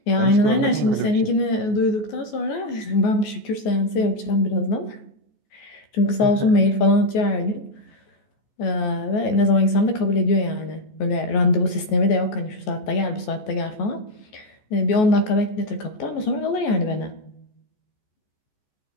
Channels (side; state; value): right; late; 14 ms